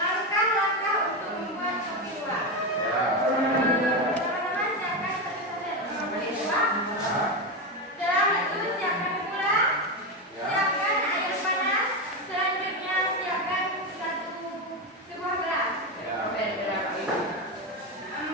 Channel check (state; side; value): normal; both; correlation 0.13